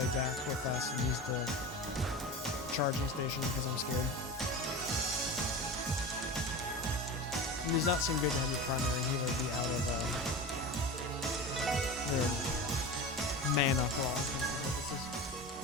back real fast and use the charging station because I'm scared. It does not seem good to have your primary healer be out of their mana for all intents and purposes.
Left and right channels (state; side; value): normal; both; correlation 0.30